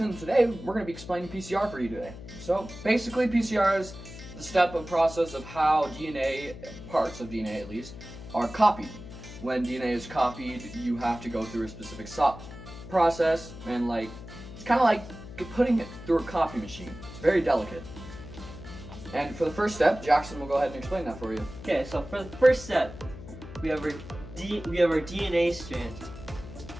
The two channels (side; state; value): left; noise; hum, 14 dB below the sound